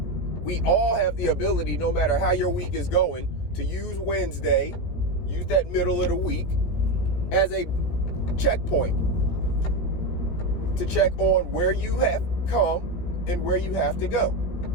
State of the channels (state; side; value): late; right; 17 ms